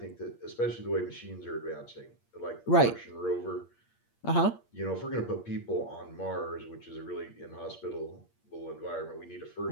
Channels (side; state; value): right; late; 8.6 ms